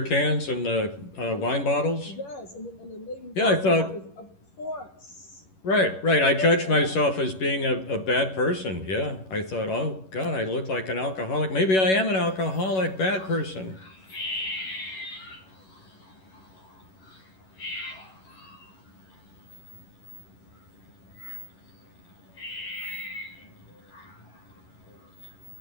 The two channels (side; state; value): right; late; 11 ms